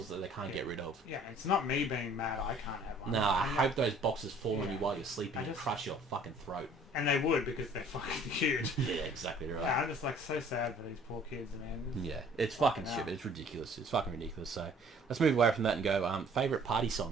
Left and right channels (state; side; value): normal; both; correlation 0.54